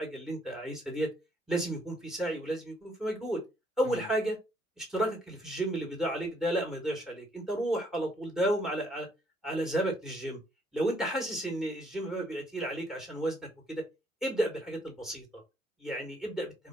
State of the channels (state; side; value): normal; both; correlation 0.68